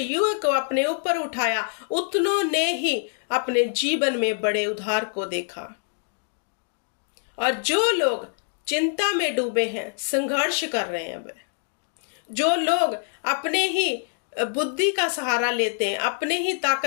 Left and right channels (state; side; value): silent; right; digital silence